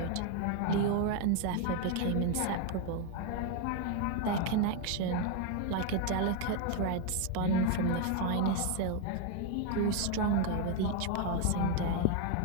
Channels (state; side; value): different; both; correlation 0.01